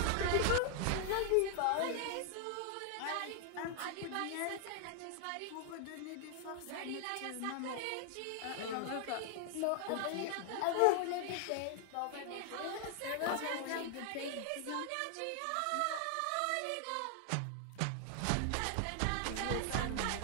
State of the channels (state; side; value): different; both; correlation 0.00